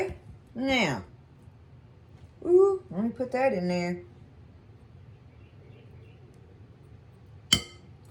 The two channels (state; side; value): identical; both; correlation 1.00